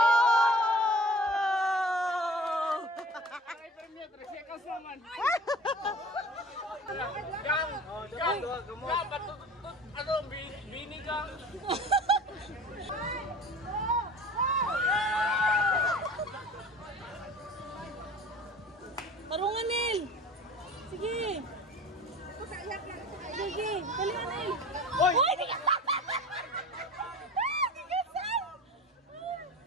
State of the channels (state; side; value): normal; both; correlation 0.41